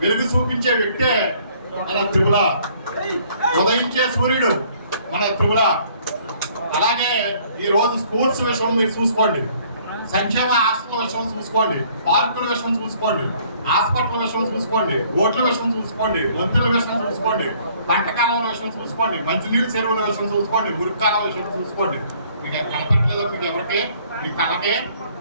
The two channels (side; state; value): both; inverted; correlation -0.60